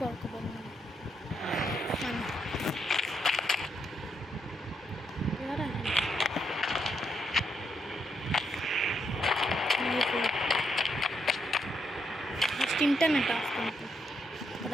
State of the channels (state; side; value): normal; both; correlation 0.79